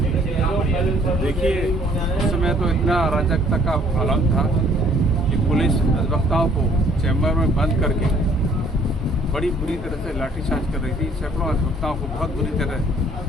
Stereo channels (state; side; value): normal; both; correlation 0.60